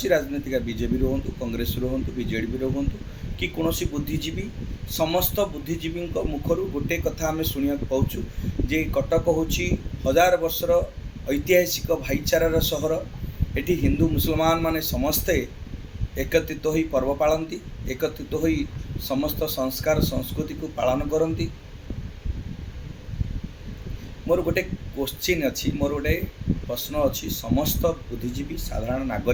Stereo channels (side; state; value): both; identical; correlation 1.00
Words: राजनीतिक बीजेपी हूँ, कांग्रेस हूँ, बीजेडी हूँ कि कौन बुद्धिजीवी, समस्त बुद्धिजीवी मुखर गोटे कथा आम शुणा पाचु जे कटक हूँ हजार वर्षर ऐतिहासिक भाईचारार सहर। एटी हिंदू मुसलमान माने समस्ते एकत्रित हो पर्व पालती, एकत्रित हो समस्त संस्कार संस्कृति को पालन करती। मोर गोटे क्वेश्चन अच्छी, मोर गोटे प्रश्न अच्छी, समस्त बुद्धिजीवी साधारण